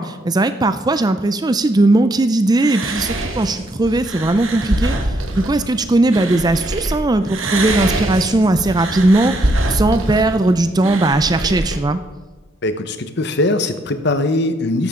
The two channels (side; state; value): both; normal; correlation 0.73